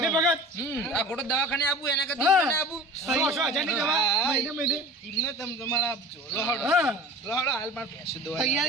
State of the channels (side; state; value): both; normal; correlation 0.39